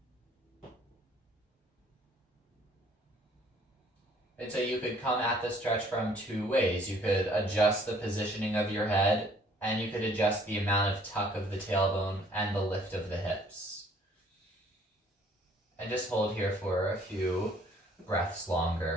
And so you could come at the stretch from two ways. You could adjust the positioning of your head, and you could adjust the amount of tuck of the tailbone and the lift of the hips. And just hold here for a few breaths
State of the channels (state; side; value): normal; both; correlation 0.59